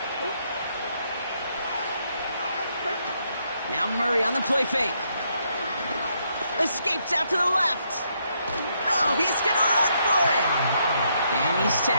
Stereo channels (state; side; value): inverted; both; correlation -0.75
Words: Now Murray on the play fake. Escapes out to the left. Oh, he's going to run for it. And he's